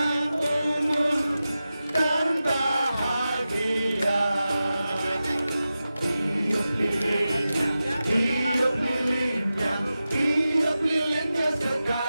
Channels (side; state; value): both; inverted; correlation -0.93